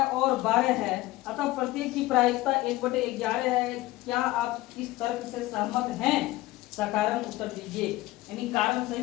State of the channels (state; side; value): quieter; right; 18.4 dB